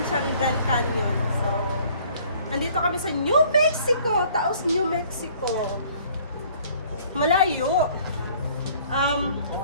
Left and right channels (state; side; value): inverted; both; correlation -0.56